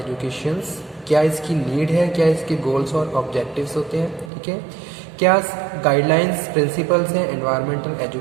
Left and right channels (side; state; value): left; drops out; at 4.3 s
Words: क्या इसकी नीड है, क्या इसके गोल्स और ऑब्जेक्टिव्स होते हैं। ठीक है, क्या गाइडलाइंस प्रिंसिपल्स हैं एनवायरमेंटल